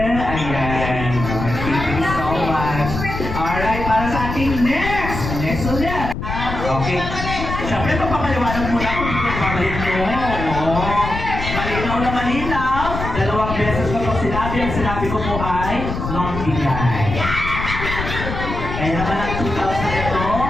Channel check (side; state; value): left; noise; rumble, 5 dB below the sound